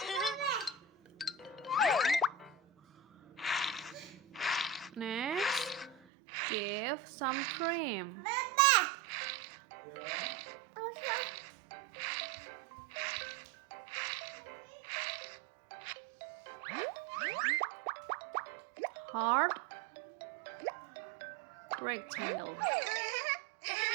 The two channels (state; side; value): drops out; left; at 6.0 s